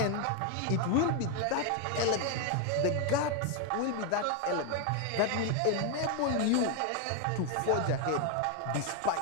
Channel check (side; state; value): both; different; correlation 0.01